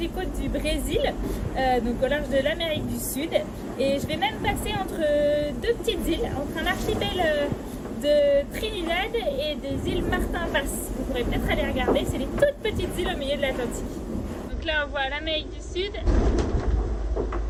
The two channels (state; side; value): identical; both; correlation 1.00